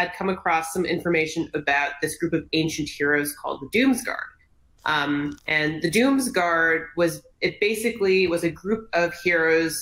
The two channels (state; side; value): identical; both; correlation 1.00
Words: come across some information about this group of ancient heroes called the Doomsguard. And the Doomsguard was a group of